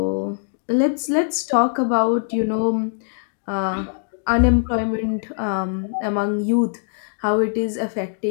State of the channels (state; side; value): silent; right; digital silence